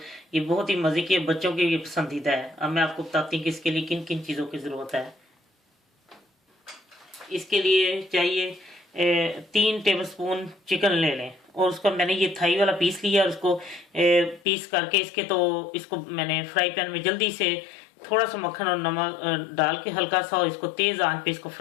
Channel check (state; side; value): drops out; right; at 14.4 s